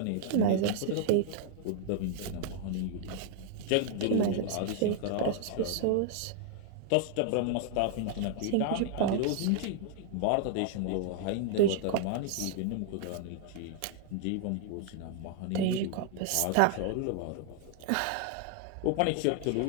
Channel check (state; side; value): different; both; correlation 0.00